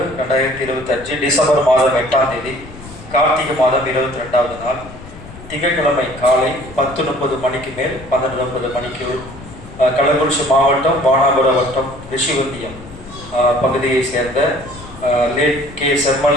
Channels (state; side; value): noise; left; rumble, 16 dB below the sound